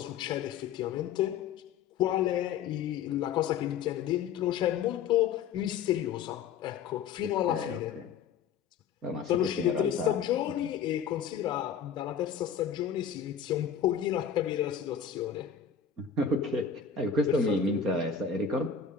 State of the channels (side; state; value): right; quieter; 7.2 dB